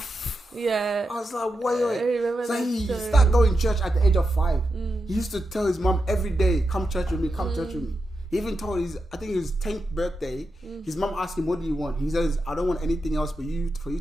Yeah. I was like, wait. I remember so that he story. started going to church at the age of 5. He used to tell his mom every day, come church with me, come church with me. He even told I think his 10th birthday, his mom asked him, what do you want? He says, I don't want anything else for you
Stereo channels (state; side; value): normal; both; correlation 0.88